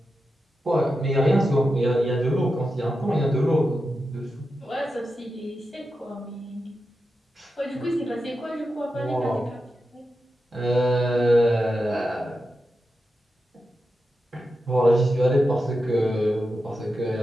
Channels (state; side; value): normal; both; correlation 0.89